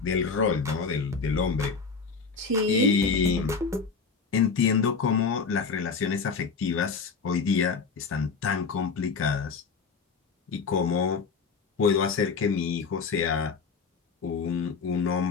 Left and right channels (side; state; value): right; quieter; 5.2 dB